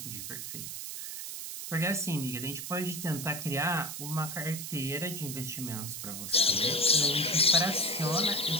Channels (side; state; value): right; noise; hiss, 7 dB below the sound